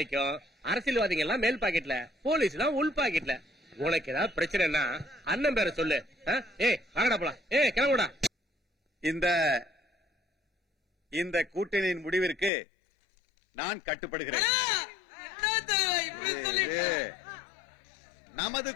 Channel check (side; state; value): right; drops out; at 12.5 s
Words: அரசியல்வாதிகள் எல்லாம் மேல் பாக்கெட்ல, போலீஸ் எல்லாம் உள் பாக்கெட்ல. உனக்கு ஏதாவது பிரச்சனைனா அண்ணன் பேரை சொல்லு. ஏய் வாங்கடா போலாம். ஏய் கிளம்புடா. இந்த கூட்டணியின் முடிவிற்கு நான் கட்டுப்படுகிறேன். நமது